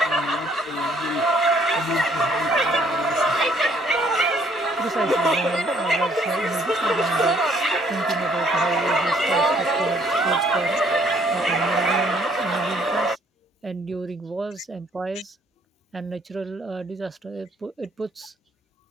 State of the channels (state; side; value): normal; both; correlation 0.63